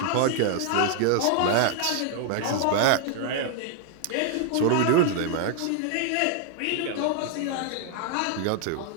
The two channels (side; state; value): both; different; correlation 0.00